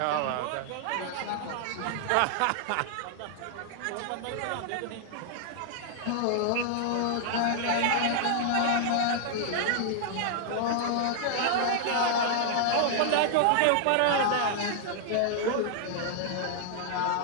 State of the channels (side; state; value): both; different; correlation 0.00